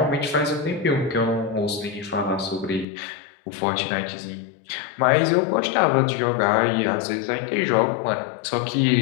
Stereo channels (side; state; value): right; drops out; at 2.9 s